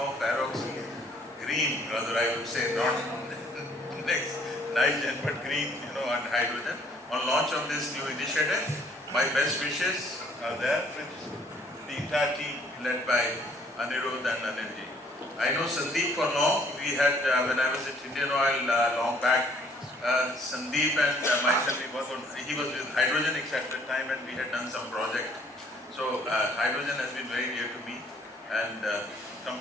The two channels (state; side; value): normal; both; correlation 0.62